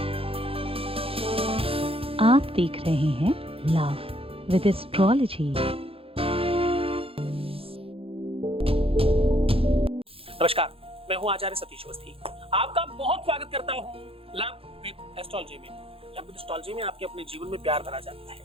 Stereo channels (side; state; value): left; late; 0.27 ms